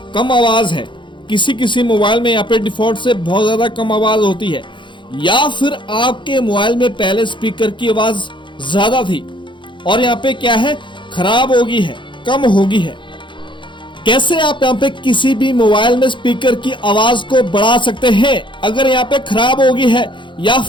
कम आवाज है। किसी मोबाइल में यहाँ पे डिफॉल्ट से बहुत ज्यादा कम आवाज होती है, या फिर आपके मोबाइल में पहले स्पीकर की आवाज ज्यादा थी और यहाँ पे क्या है, खराब होगी है, कम होगी है। कैसे आप यहाँ पे किसी भी मोबाइल में स्पीकर की आवाज को बढ़ा सकते हैं अगर यहाँ पे खराब होगी है या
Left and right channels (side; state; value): right; late; 0.23 ms